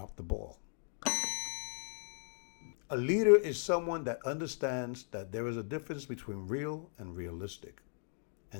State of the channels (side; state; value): right; silent; 53 dB below the other